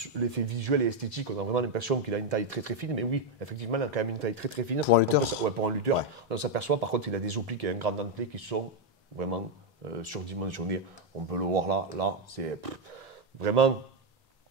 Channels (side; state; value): both; normal; correlation 0.03